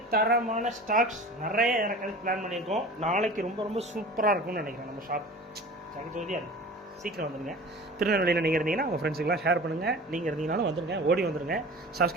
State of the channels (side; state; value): both; normal; correlation 0.39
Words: தரமான ஸ்டாக்ஸ் நிறைய இறக்கிறதுக்கு பிளான் பண்ணியிருக்கோம். நாளைக்கு ரொம்ப ரொம்ப சூப்பராக இருக்கும்னு நினைக்கிறேன் நம்ம ஷாப். ஜகஜோதியாக இருக்கும். சீக்கிரம் வந்துடுங்க. திருநெல்வேலியில் நீங்கள் இருந்தீங்கன்னா உங்கள் ஃப்ரெண்ட்ஸுக்கெலாம் ஷேர் பண்ணுங்கள். நீங்கள் இருந்தீங்கனாலும் வந்துடுங்க, ஓடி வந்துடுங்க.